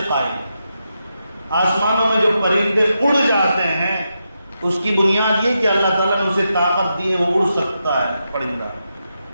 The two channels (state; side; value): inverted; both; correlation -0.86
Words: قائم ہے۔ آسمانوں میں جو پرندے اڑ جاتے ہیں اس کی بنیاد یہ کہ اللہ تعالیٰ نے اسے طاقت دی ہے، وہ اڑ سکتا ہے پرندہ۔